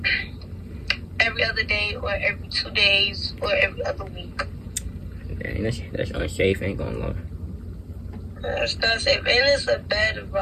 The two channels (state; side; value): identical; both; correlation 1.00